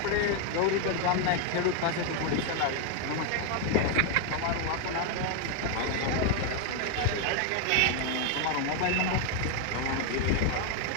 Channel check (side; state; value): both; different; correlation 0.01